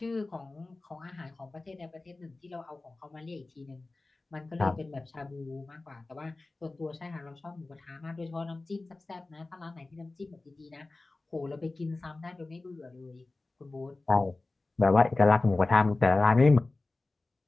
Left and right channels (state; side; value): quieter; right; 3.2 dB